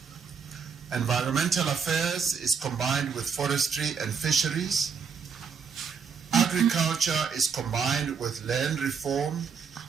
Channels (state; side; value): quieter; left; 6.2 dB